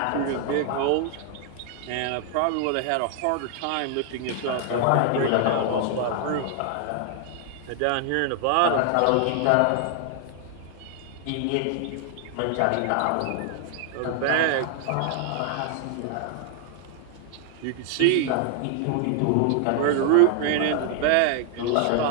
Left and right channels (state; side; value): different; both; correlation 0.00